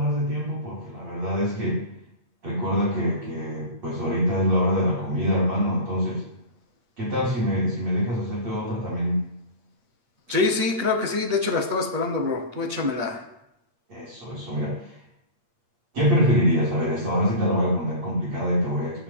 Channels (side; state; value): left; late; 8.5 ms